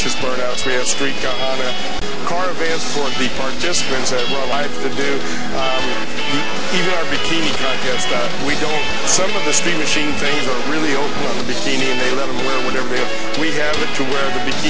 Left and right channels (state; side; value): identical; both; correlation 1.00